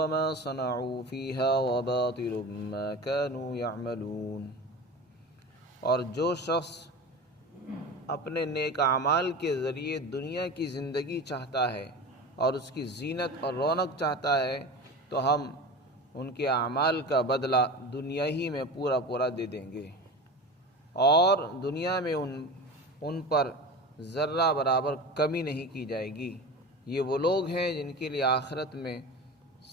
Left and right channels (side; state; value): both; normal; correlation 0.31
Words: ما صنعوا فيها وباطل ما كانوا يعملون۔ اور جو شخص اپنے نیک اعمال کے ذریعے دنیا کی زندگی چاہتا ہے اور اس کی زینت اور رونق چاہتا ہے تو ہم ان کے اعمال کا بدلہ دنیا ہی میں پورا دے دیں گے، اور دنیا میں ان پر ذرہ برابر کمی نہیں کی جائے گی۔ یہ وہ لوگ ہیں جن کے لیے آخرت میں